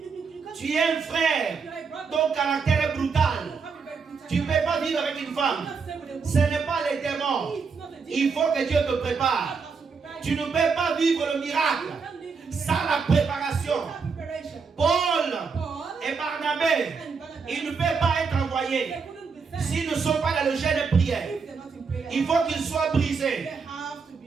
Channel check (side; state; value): left; quieter; 5.3 dB